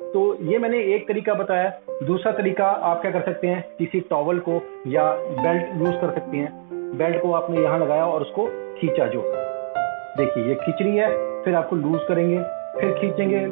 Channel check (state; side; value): silent; left; digital silence